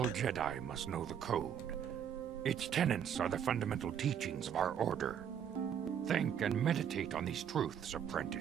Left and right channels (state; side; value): quieter; left; 8.6 dB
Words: Jedi must know the Code. Its tenets are the fundamental teachings of our order. Think and meditate on these truths,